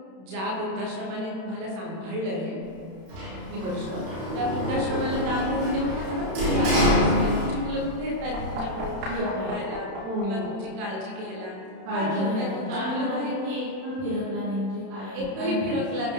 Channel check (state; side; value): late; left; 31 ms